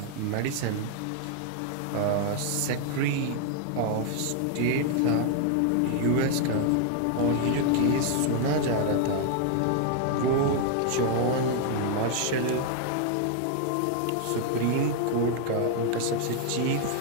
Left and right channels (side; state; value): both; different; correlation 0.00